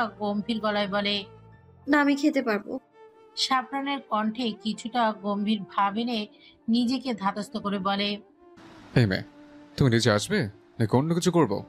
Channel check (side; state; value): both; identical; correlation 1.00